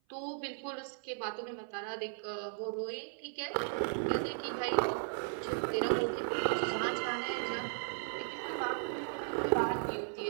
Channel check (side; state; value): left; silent; 54 dB below the other